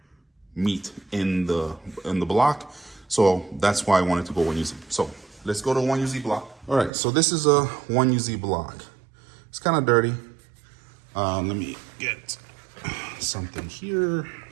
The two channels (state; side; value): drops out; left; at 6.9 s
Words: meat in the block. So that's why I wanted to go 1UZ. So let's go to 1UZ block. All right, so this is a 1UZ block. It's kind of dirty. Let me get something here